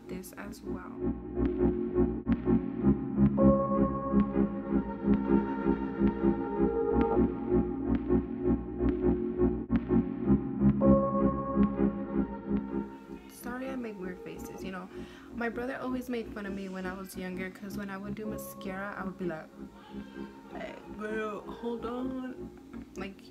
this as well. Sorry, I make weird faces. You know, my brother always made fun of me when I was younger because when I would do mascara, I would be like, "Hey, girl, hold on." Like,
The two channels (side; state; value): both; identical; correlation 1.00